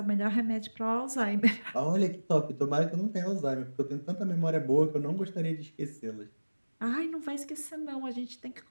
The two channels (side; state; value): both; inverted; correlation -1.00